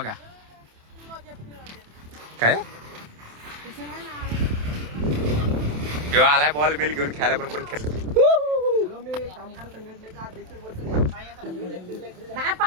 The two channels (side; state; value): left; late; 27 ms